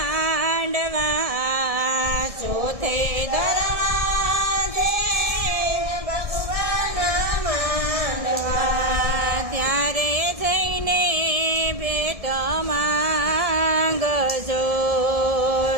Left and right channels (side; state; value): left; late; 1.6 ms